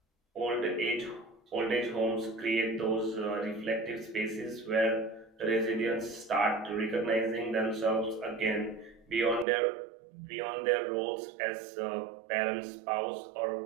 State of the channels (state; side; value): drops out; left; at 9.5 s